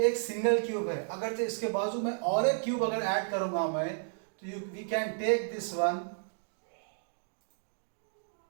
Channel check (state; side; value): silent; left; digital silence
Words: एक single cube है. अगर इसके बाजू में और एक क्यूब अगर ऐड करूंगा मैं, तो we can take this one